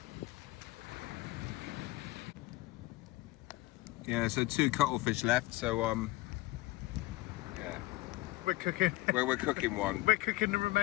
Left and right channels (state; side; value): quieter; right; 19.5 dB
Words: Yeah, so 2 cuttlefish left, so yeah. We're cooking. We're cooking one. We're cooking the